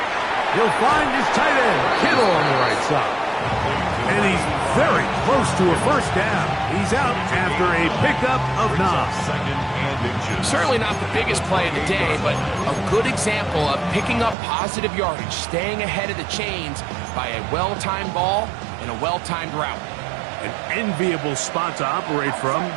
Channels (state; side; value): drops out; left; at 14.4 s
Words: He'll find his tight end, Kittle, on the right side. And he's very close to a 1st down. He's out after a pickup of 9. Certainly not the biggest play of the day, but a good example of picking up positive yardage, staying ahead of the chains by a well-timed ball and a well-timed route. An enviable spot to operate from.